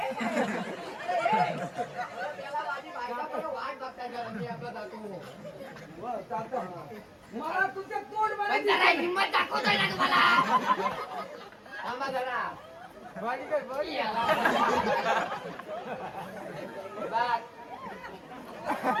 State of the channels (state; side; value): identical; both; correlation 1.00